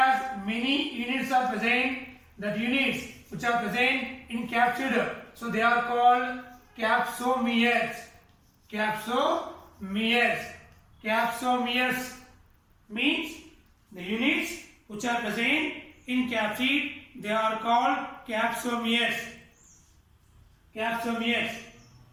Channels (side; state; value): both; identical; correlation 1.00